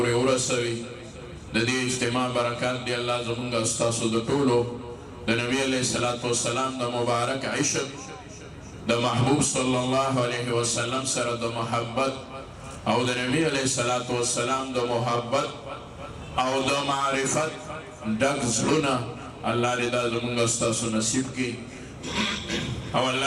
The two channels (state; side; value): identical; both; correlation 1.00